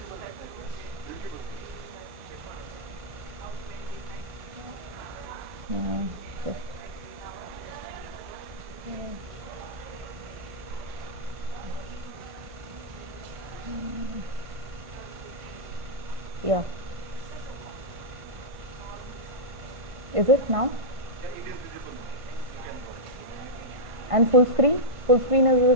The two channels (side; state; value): left; late; 1.5 ms